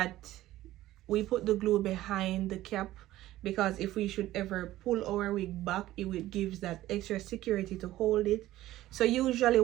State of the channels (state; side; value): quieter; left; 15.2 dB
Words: we put the glue behind the cap because if we should ever pull our wig back, it gives that extra security to hold it. So usually